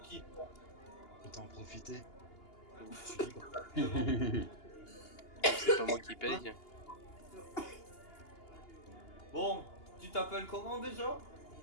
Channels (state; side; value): late; right; 2.8 ms